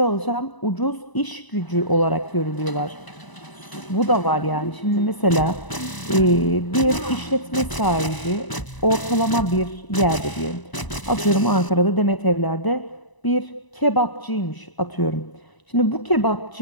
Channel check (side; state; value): right; late; 1.0 ms